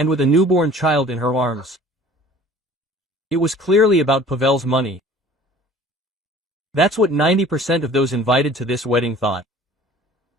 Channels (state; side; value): normal; both; correlation 0.48